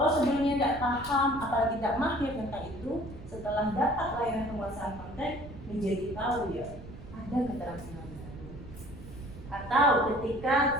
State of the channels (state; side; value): noise; right; rumble, 15 dB below the sound